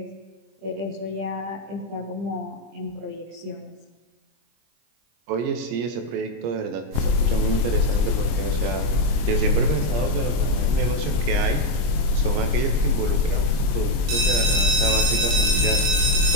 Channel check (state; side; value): late; left; 25 ms